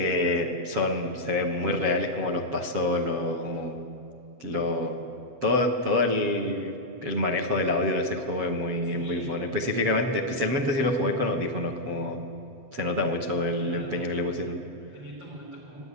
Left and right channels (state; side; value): late; left; 7.9 ms